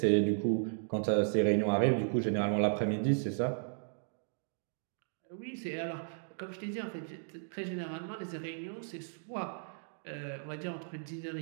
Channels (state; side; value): silent; left; digital silence